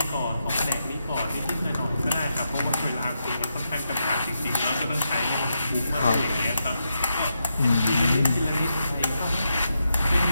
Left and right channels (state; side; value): inverted; both; correlation -0.84